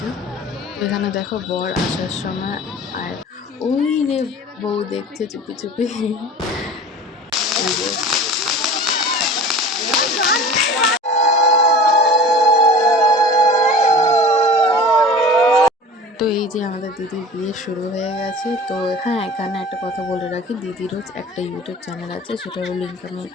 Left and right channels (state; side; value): normal; both; correlation 0.39